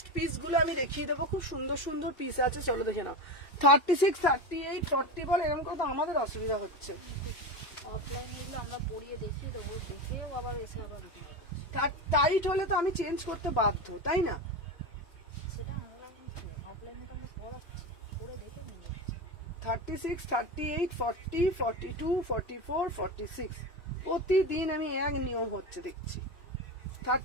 পিস গুলো আমি দেখিয়ে দেবো, খুব সুন্দর সুন্দর পিস আছে। চলো দেখে নাও 36, 38, 40 বল, এরকম করে তো আমাদের অসুবিধা হচ্ছে। অফলাইনে আমরা পড়িয়ে দেখিয়ে দেবো, দেখেও আবার এসে আবার টাইট হলে তো আমি চেঞ্জ করতে বাধ্য, তাই না? সেটা অফলাইনে তো আমরা পড়াচ্ছি, পড়ে দেখে নিয়ে যাচ্ছি। 36, 38, 40, 42, 44, 46 প্রতিদিন আমি এক নিয়ম হচ্ছে দেখছি।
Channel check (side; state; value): right; late; 2.9 ms